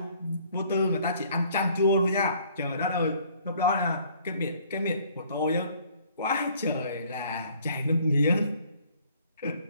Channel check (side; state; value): both; inverted; correlation -0.59